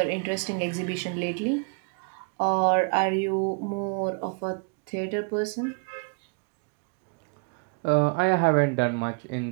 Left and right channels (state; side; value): quieter; left; 34.7 dB